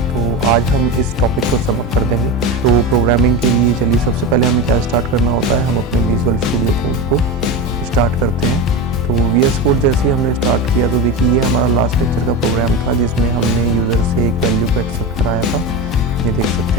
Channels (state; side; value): normal; both; correlation 0.22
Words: तो आज हम इस टॉपिक को समअप कर देंगे। तो प्रोग्रामिंग के लिए चलिए सबसे पहले हमें क्या स्टार्ट करना होता है, हम अपने विजुअल स्टूडियो कोड को स्टार्ट करते हैं। तो VS कोड जैसे ही हमने स्टार्ट किया तो देखिए ये हमारा लास्ट लेक्चर का प्रोग्राम था जिसमें हमने यूज़र से एक वैल्यू को एक्सेप्ट कराया था। ये देख